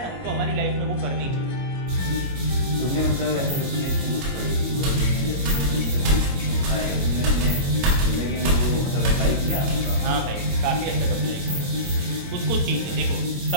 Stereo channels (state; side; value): late; left; 22 ms